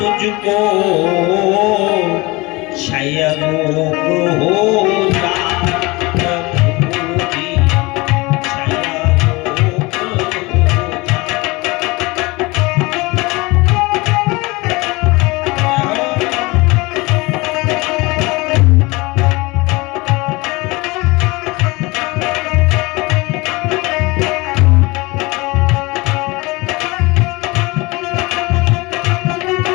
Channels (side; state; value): right; quieter; 23.8 dB